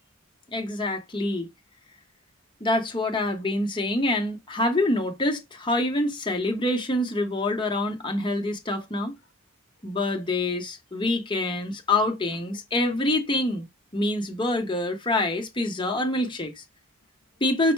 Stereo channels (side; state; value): both; normal; correlation 0.49